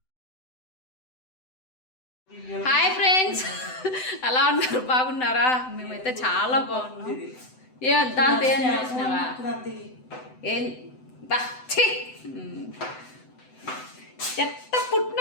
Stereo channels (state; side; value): late; right; 7.9 ms